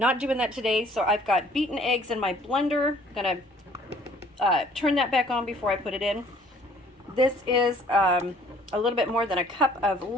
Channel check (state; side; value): normal; both; correlation 0.57